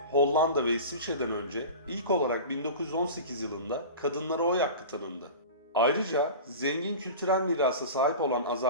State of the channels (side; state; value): both; inverted; correlation -0.33